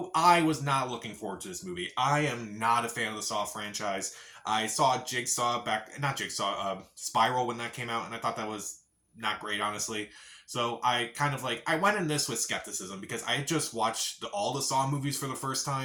I was not looking forward to this movie. I am not a fan of the Saw franchise. I saw Jigsaw back, not Jigsaw, Spiral when that came out, and I thought that was not great, honestly. So I went in this with skepticism because I had just watched all the Saw movies for the first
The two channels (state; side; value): identical; both; correlation 1.00